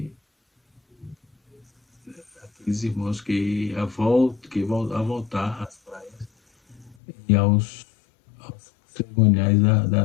a voltar às praias e aos cerimoniais da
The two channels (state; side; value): drops out; right; at 7.0 s